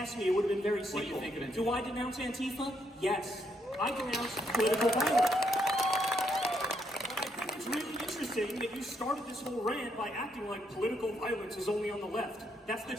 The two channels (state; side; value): normal; both; correlation 0.75